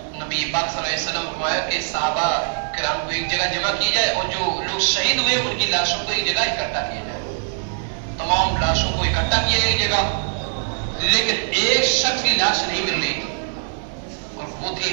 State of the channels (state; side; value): silent; left; 59 dB below the other